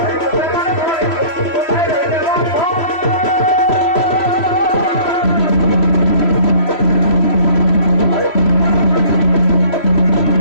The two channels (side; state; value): right; late; 3.1 ms